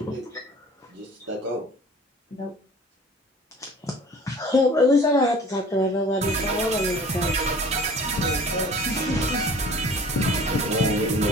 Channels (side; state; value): both; normal; correlation 0.46